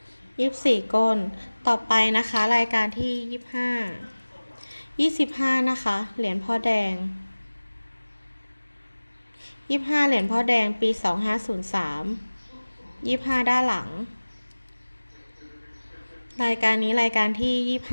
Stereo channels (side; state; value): both; inverted; correlation -1.00